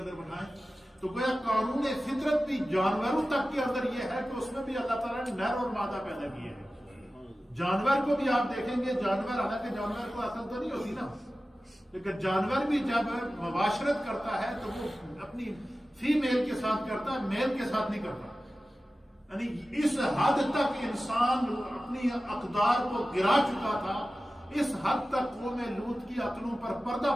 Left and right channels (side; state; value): both; normal; correlation 0.95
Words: بٹھائیں۔ تو گویا قانون فطرت بھی جانوروں تک کے اندر یہ ہے کہ اس میں بھی اللہ تعالیٰ نے نر اور مادہ پیدا کیے ہیں۔ جانور کو بھی آپ دیکھیں گے، جانور حالانکہ جانور کو عقل تو نہیں ہوتی نا، لیکن جانور بھی جب مباشرت کرتا ہے تو وہ اپنی فیمیل کے ساتھ کرتا ہے، میل کے ساتھ نہیں کرتا۔ یعنی اس حد تک انسان اپنی اقدار کو گرا چکا تھا، اس حد تک قوم لوط کی عقلوں پر